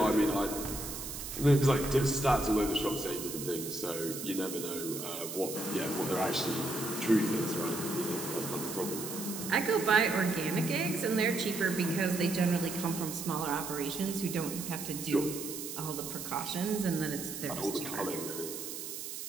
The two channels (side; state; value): right; noise; hiss, 7 dB below the sound